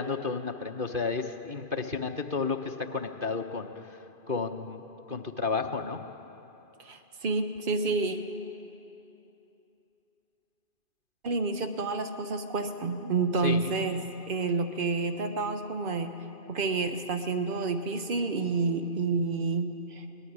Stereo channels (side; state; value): left; late; 2.5 ms